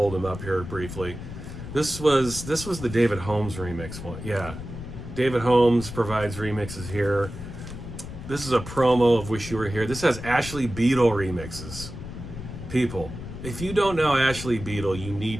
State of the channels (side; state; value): left; noise; rumble, 10 dB below the sound